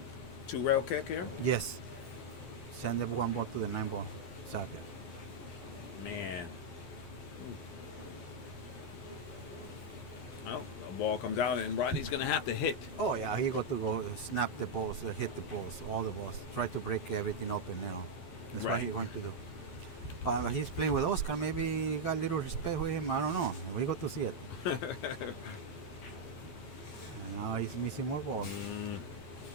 2-rail kick here. Yes. Send the 1 ball to the 9 ball. Exactly. Man. Well, the ball comes out and Rodney's gonna have to hit. Oh yeah, he got to go snap the balls, hit the balls, all the balls. Try to break everything open. You know. That's what Right. he's going to do. But he's playing with Oscar. Maybe he got a little respect with him. I don't know. We got to see it. And now he's missing more balls.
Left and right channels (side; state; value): right; late; 11 ms